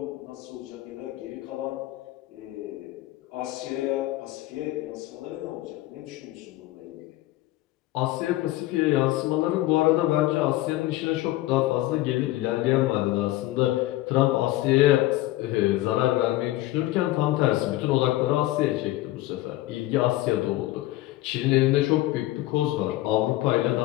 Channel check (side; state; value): right; quieter; 16.7 dB